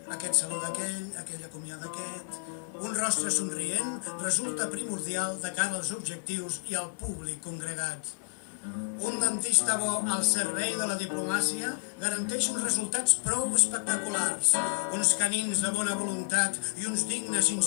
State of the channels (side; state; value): right; silent; 57 dB below the other